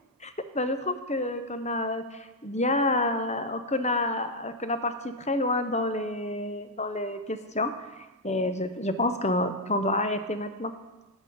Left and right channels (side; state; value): both; normal; correlation 0.00